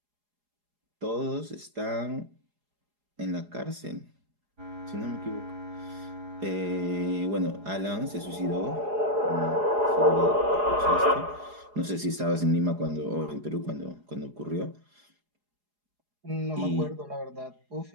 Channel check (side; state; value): left; late; 4.8 ms